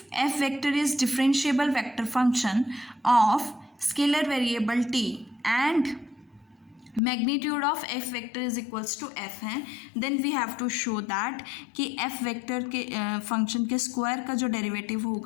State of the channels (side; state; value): right; drops out; at 7.0 s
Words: F vector is differentiable vector function of scalar variable T and magnitude of F vector is equals to F है, then we have to show that कि F vector के function के square का जो derivative